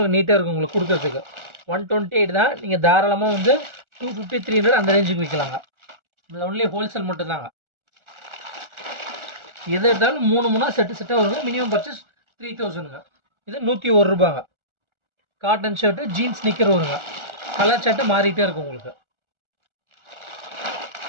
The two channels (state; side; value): late; left; 1.4 ms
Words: நீட்டாக இருக்கும் உங்களுக்கு கொடுக்குறதுக்கு. 128 தான். நீங்கள் தாராளமாக வந்து 250, 300 அந்த ரேஞ்சுக்கு விற்கலாங்க. இதில் ஒன்லி ஹோல்சேல் மட்டும்தாங்க. எது எடுத்தாலும் 3 செட்டாக வருங்க. மினிமம் பர்ச்சேஸ் 3000ங்க. இது 101 ரூபாங்க. காட்டன் ஷர்ட்டு, ஜீன்ஸ், ஸ்னிக்கர் வருங்க. கலர் ஷர்ட்டு மாறிட்டே இருக்கும் உங்களுக்கு.